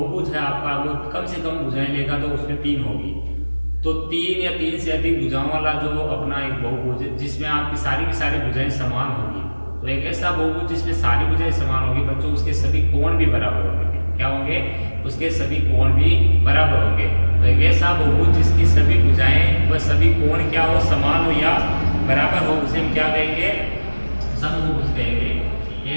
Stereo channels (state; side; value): inverted; both; correlation -1.00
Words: है आपका, वो कम से कम भुजाएं लेगा तो उसमें तीन होगी। तो तीन या तीन से अधिक भुजाओं वाला जो अपना एक बहुभुज है जिसमें आपकी सारी की सारी भुजाएं समान होगी। तो एक ऐसा बहुभुज जिसमें सारी भुजाएं समान होगी बच्चों, उसके सभी कोण भी बराबर होंगे। क्या होंगे? उसके सभी कोण भी बराबर होंगे। तो एक ऐसा बहुभुज जिसकी सभी भुजाएं व सभी कोण क्या हो, समान हो या बराबर हो, उसे हम क्या कहेंगे? समबहुभुज कहेंगे।